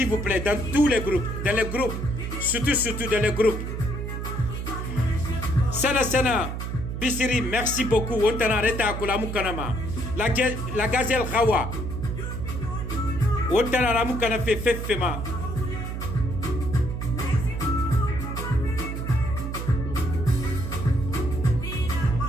vous plaît dans tous les groupes, dans les groupes. Surtout dans les groupes. Sana Bissiri, merci beaucoup. On t'a arrêté à Kolamukanama. La gazelle Rawa. On t'a arrêté à Fefema.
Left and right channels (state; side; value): noise; right; hum, 4 dB below the sound